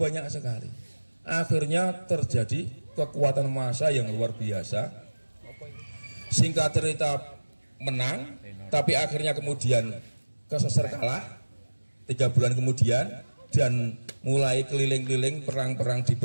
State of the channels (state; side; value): inverted; both; correlation -1.00